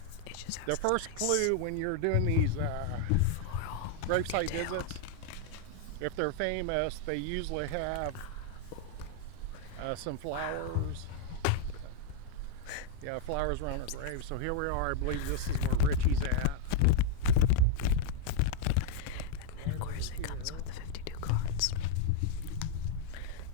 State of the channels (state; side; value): different; both; correlation 0.00